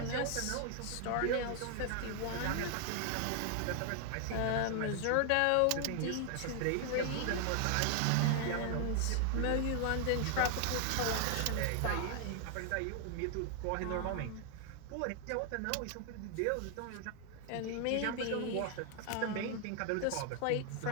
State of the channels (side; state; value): both; different; correlation 0.00